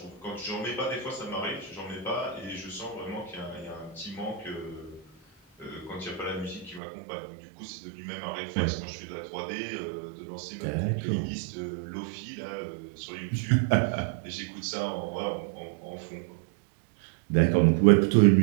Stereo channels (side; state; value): left; drops out; at 6.8 s